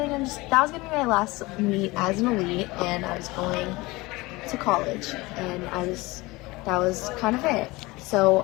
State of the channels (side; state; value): right; quieter; 22.0 dB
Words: on that was going to be my last meet as an elite, and I was going to college, and that was kind of it. So